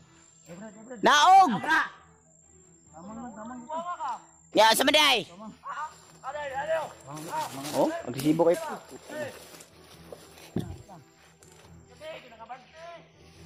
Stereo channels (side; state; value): both; identical; correlation 1.00